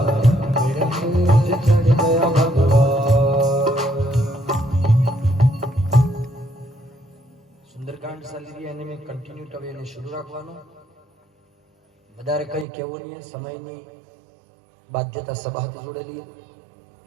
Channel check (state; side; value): drops out; left; at 12.7 s